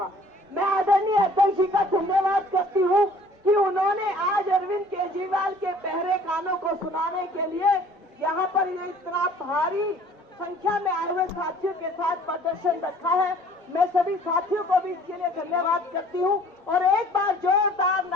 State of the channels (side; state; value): both; normal; correlation 0.53